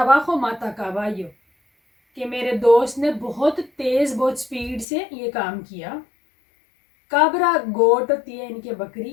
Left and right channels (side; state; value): right; drops out; at 4.9 s